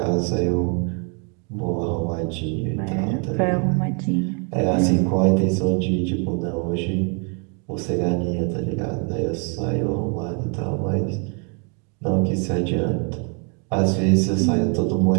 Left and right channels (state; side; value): quieter; left; 37.0 dB